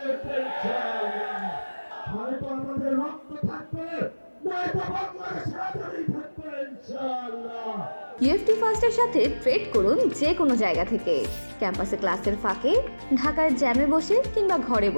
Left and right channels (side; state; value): both; inverted; correlation -1.00